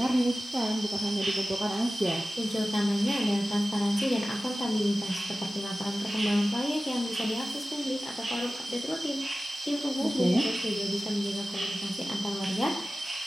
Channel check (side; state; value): both; normal; correlation 0.96